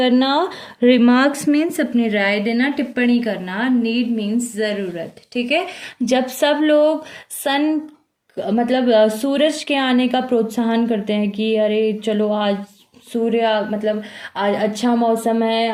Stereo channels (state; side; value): identical; both; correlation 1.00